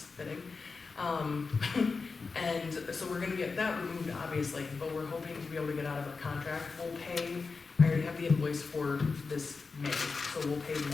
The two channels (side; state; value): right; quieter; 4.5 dB